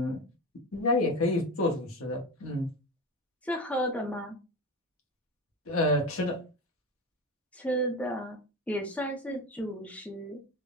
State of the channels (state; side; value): normal; both; correlation 0.24